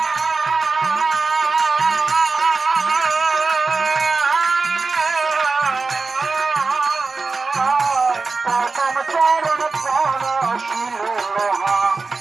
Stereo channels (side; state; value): left; quieter; 4.2 dB